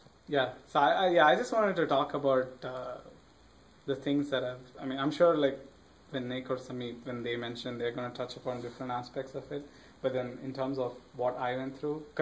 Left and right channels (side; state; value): both; identical; correlation 1.00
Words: Yeah. So I just wanted to talk about the things that I'm sure like when Nick or Samit, when they mention, they're going to touch upon different aspects of it. But then in terms of what I went through,